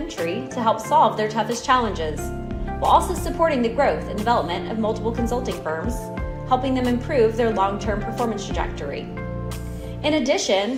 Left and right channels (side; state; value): both; identical; correlation 1.00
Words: to help solve their toughest challenges, while also supporting the growth and development of multiple consulting firms, helping them improve their long-term performance trajectory. In